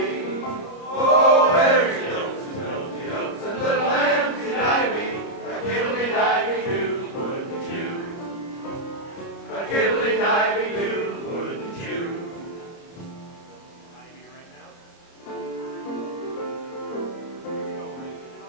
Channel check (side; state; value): right; late; 30 ms